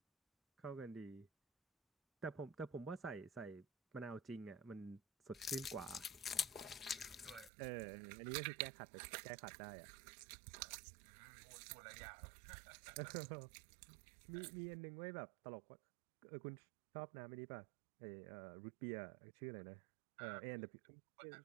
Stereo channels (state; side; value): drops out; left; at 7.5 s